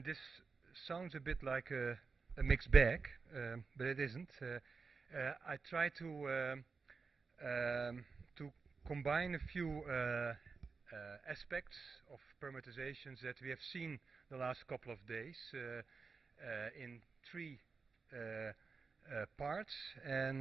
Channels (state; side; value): quieter; left; 4.7 dB